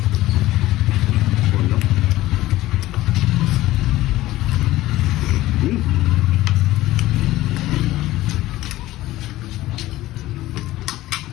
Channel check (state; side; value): quieter; right; 16.4 dB